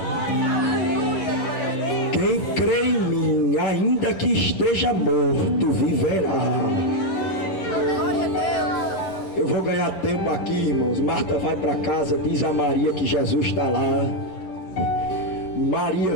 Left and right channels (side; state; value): right; late; 11 ms